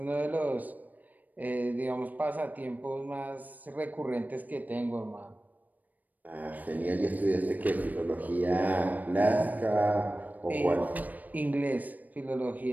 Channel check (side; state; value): left; late; 0.081 ms